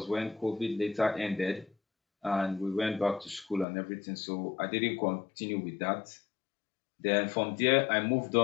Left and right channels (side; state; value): right; drops out; at 3.7 s